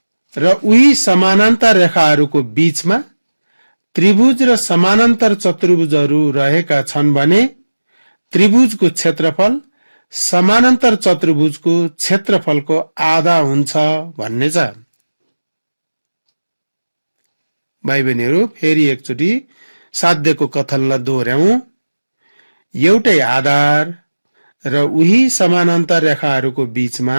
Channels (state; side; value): inverted; both; correlation -1.00